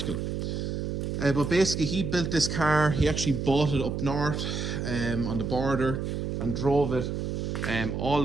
But basically, he built this car. He actually bought it up north on the border and drove it all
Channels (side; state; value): right; noise; hum, 3 dB below the sound